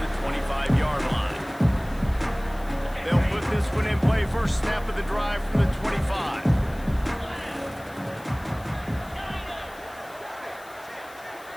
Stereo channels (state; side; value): noise; left; hiss, 23 dB below the sound